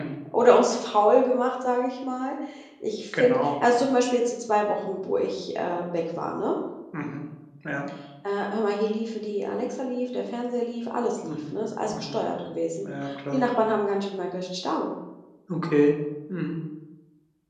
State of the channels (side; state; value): both; identical; correlation 1.00